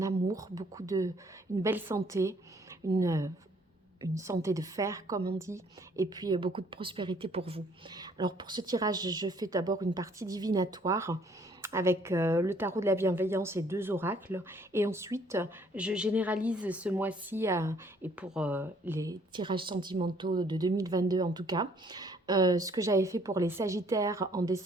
amour, une belle santé, une, une santé de fer comme on dit, et puis beaucoup de prospérité pour vous. Alors pour ce tirage, je fais d'abord une partie divinatoire avec le tarot de la bienveillance et 2 oracles. Et ensuite, je généralise ce mois-ci, et pour les tirages sentimentaux de 2022 en tout cas, ce que j'avais fait pour les Sagittaires en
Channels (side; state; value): both; normal; correlation 0.62